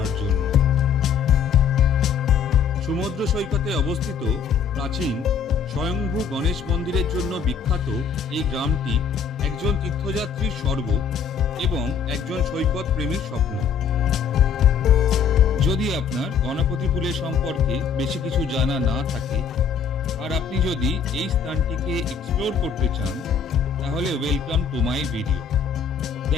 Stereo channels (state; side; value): quieter; right; 6.6 dB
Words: জন্য। সমুদ্র সৈকতে অবস্থিত প্রাচীন স্বয়ংভূ গণেশ মন্দিরের জন্য বিখ্যাত এই গ্রামটি একজন তীর্থযাত্রীর স্বর্গ এবং একজন সৈকত প্রেমীর স্বপ্ন। যদি আপনার গণপতিপুলে সম্পর্কে বেশি কিছু জানা না থাকে আর আপনি যদি এই স্থানটিকে এক্সপ্লোর করতে চান, তাহলে welcome to my video,